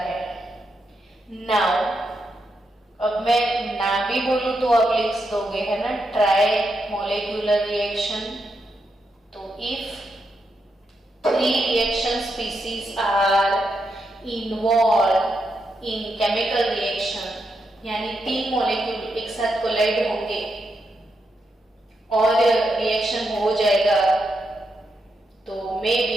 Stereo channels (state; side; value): normal; both; correlation 0.83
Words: नाउ अब मैं ना भी बोलूं तो आप लिख दोगे, है ना, ट्राई मॉलिक्यूलर रिएक्शन. तो if three reaction species are involved in chemical reaction, यानी तीन मॉलिक्यूल एक साथ कोलाइड होंगे और रिएक्शन हो जाएगा, तो मे